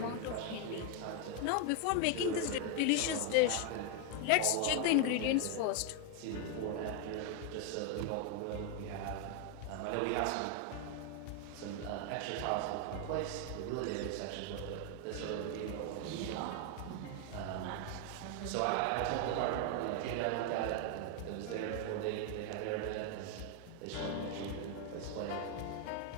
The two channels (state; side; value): different; both; correlation 0.01